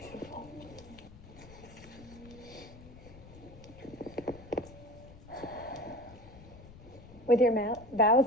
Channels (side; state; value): left; noise; rumble, 18 dB below the sound